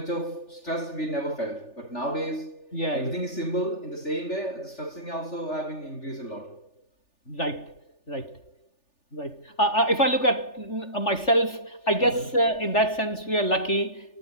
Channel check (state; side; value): late; right; 3.4 ms